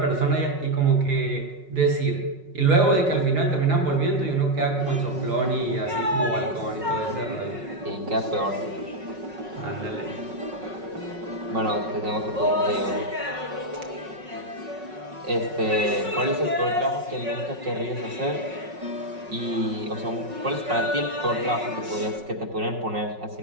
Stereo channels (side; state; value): left; late; 5.4 ms